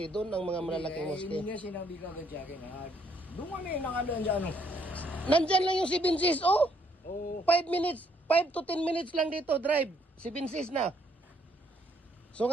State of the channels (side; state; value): both; normal; correlation 0.69